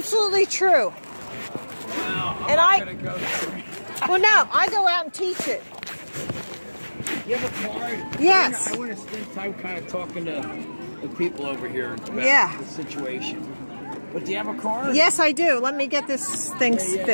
true. Wow. I'm And not I- gonna go there. Well, no, I go out and teach it. You have a card? Yes. I want to spend time kind of talking to the people over here about Yeah. the situation. But do you have a card? Yes, I do. Let me get this thing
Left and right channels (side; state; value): both; inverted; correlation -1.00